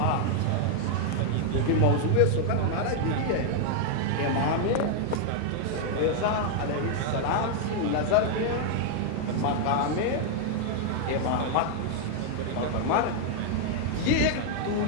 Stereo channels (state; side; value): different; both; correlation 0.00